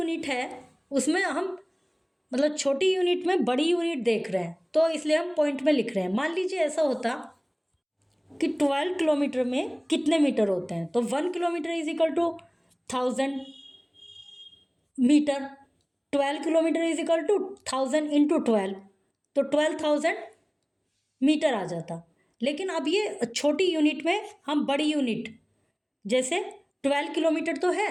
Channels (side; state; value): both; identical; correlation 1.00